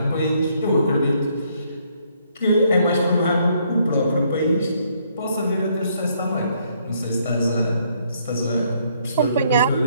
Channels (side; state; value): both; inverted; correlation -0.69